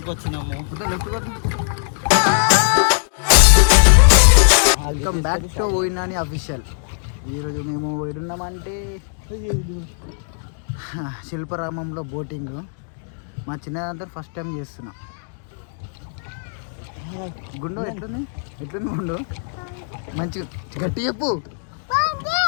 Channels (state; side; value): silent; right; digital silence